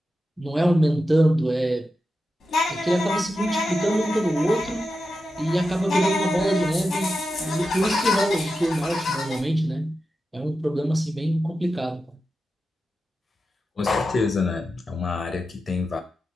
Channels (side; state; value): both; normal; correlation 0.90